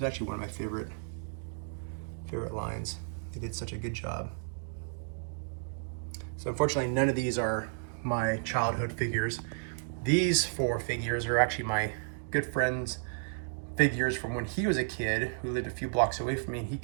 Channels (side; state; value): left; silent; digital silence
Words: actually one of my favorite lines. They did such a good job. So unfortunately, none of these are my childhood figures. These 4 figures are actually my good friend's figures from when he was a kid, who lived a few blocks away from me. He